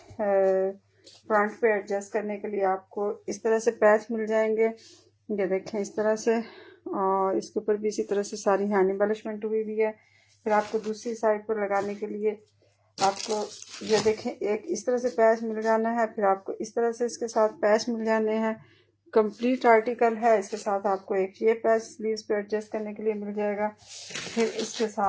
पे एडजस्ट करने के लिए आपको इस तरह से पैच मिल जाएंगे। ये देखें, इस तरह से, और इसके ऊपर भी इसी तरह से सारी हैंड एम्बेलिशमेंट हुई भी है। फिर आपको दूसरी साइड पर लगाने के लिए आपको ये देखें एक इस तरह से पैच मिल जाना है। फिर आपको इस तरह से इसके साथ पैच मिल जाने हैं। कंप्लीट आर्टिकल है, इसके साथ आपको एक ये पैच स्लीव्स पे एडजस्ट करने के लिए मिल जाएगा। फिर इसके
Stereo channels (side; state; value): both; identical; correlation 1.00